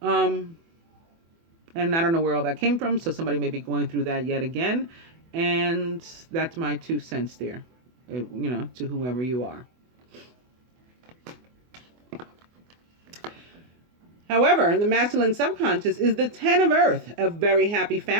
And I don't know where all that came from, so somebody may be going through that yet again. And that's my 2 cents there, to whoever you are. However, in the masculine subconscious is the 10 of Earth, a very happy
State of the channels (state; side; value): late; left; 24 ms